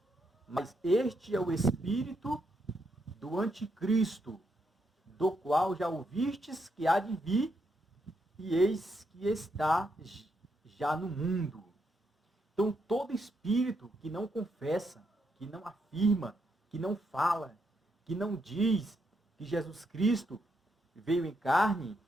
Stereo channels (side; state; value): both; normal; correlation 0.79